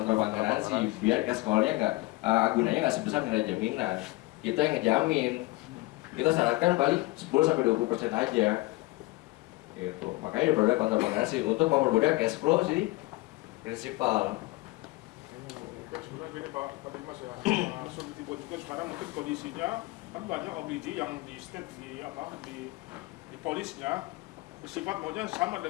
bank garansi, biar cash call-nya nggak agunannya nggak sebesar nilai jaminan. Kita yang ngejamin, kita syaratkan balik 10-20% aja. Gitu. Makanya produk kontrak bank garansi untuk mempermudah cash flow si prinsipal. Sebenarnya gini Pak Dimas ya, surety bond juga sekarang mungkin kondisinya kan banyak Obligi yang di state di polisnya bersifat maunya sama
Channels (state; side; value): quieter; right; 21.4 dB